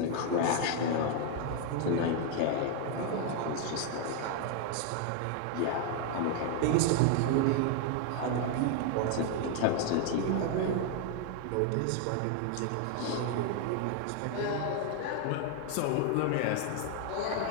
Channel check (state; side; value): different; both; correlation 0.00